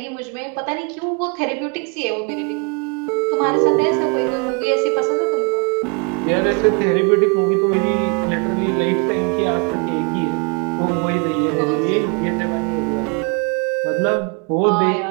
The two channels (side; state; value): left; quieter; 33.6 dB